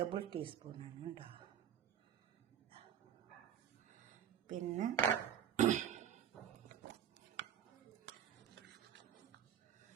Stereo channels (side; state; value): left; quieter; 9.3 dB